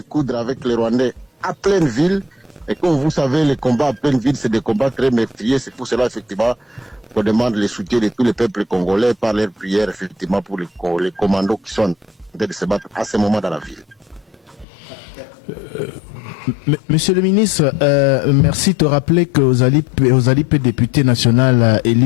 avec les Rwandais à pleine ville. Et comme vous savez, les combats à pleine ville, c'est des combats très meurtriers. C'est pour cela, effectivement, qu'on demande le soutien de tous les peuples congolais par leurs prières, effectivement, pour les commandos qui sont en train de se battre à ce moment dans la ville. Monsieur le ministre, merci de te rappeler que aux alipes député national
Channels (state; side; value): drops out; right; at 14.7 s